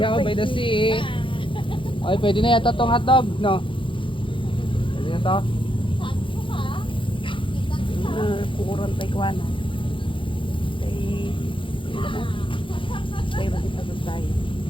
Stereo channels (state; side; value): late; right; 0.25 ms